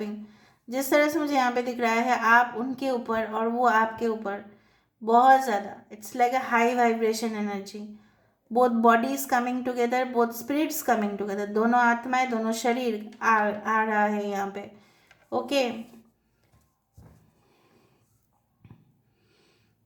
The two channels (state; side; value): identical; both; correlation 1.00